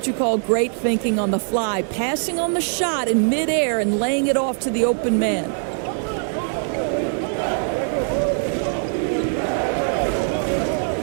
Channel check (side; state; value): left; silent; 60 dB below the other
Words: you call great thinking on the fly. Passing on the shot in midair and laying it off to the open man.